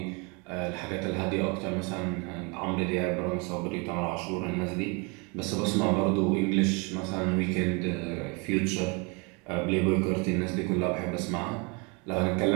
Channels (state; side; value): quieter; left; 30.9 dB